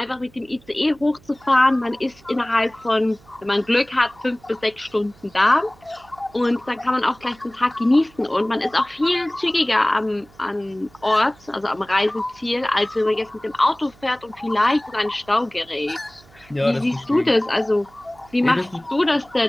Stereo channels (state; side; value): noise; right; hum, 27 dB below the sound